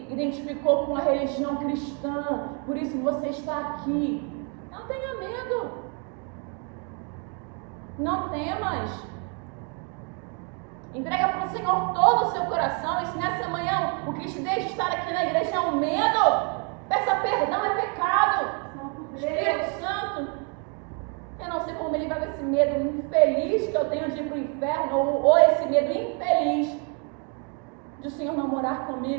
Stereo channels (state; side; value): quieter; left; 37.5 dB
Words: identificou com a religião cristã. Por isso você está aqui. Não tenha medo. Não temas. Entrega para o Senhor todo o seu coração. E se nessa manhã o que te deixa estar aqui na igreja é um medo, peça perdão, é pecado. Espírito Santo, eu não sei como me livrar desse medo infeliz que eu tenho de ir para o inferno, ou esse medo infeliz de o Senhor não morar